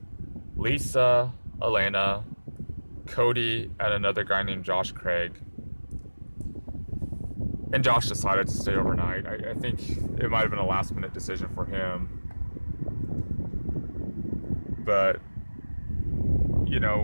Lisa, Elena, Cody, and another guy named Josh Craig. And Josh decided to stay overnight. I think it might have been a last minute decision for him. But,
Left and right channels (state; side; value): inverted; both; correlation -1.00